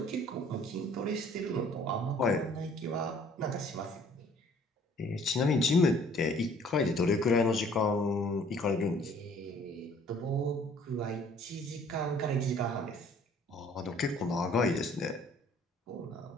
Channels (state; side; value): normal; both; correlation 0.56